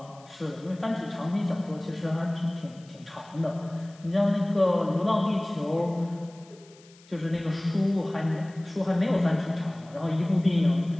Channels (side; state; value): left; noise; hiss, 26 dB below the sound